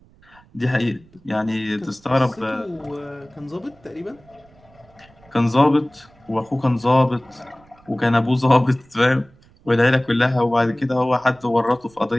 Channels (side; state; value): right; noise; rumble, 29 dB below the sound